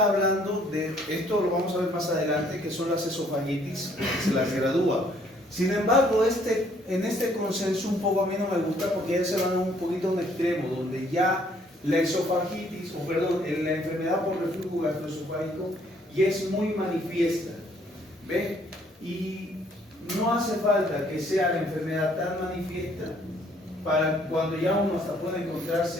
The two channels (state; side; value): normal; both; correlation 0.64